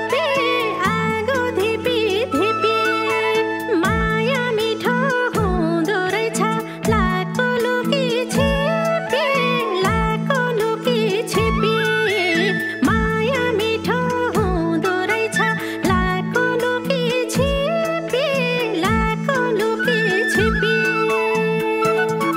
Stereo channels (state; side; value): identical; both; correlation 1.00